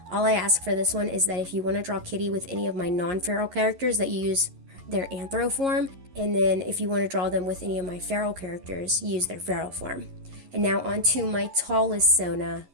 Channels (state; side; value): late; left; 11 ms